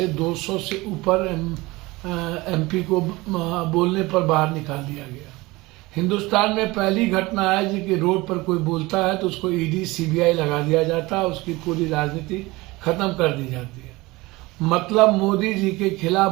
200 से ऊपर एमपी को बोलने पर बाहर निकाल दिया गया। हिंदुस्तान में पहली घटना है कि रोड पर कोई बोलता है तो उसको ईडी सीबीआई लगा दिया जाता है, उसकी पूरी राजनीति खत्म कर दी जाती है। मतलब मोदी जी के खिलाफ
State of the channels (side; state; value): left; quieter; 21.4 dB